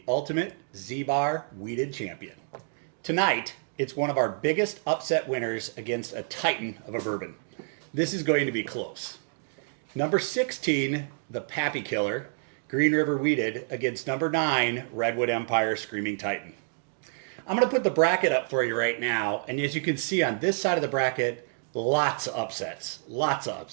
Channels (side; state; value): left; silent; digital silence